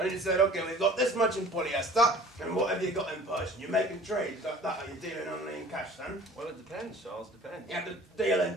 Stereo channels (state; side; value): normal; both; correlation 0.47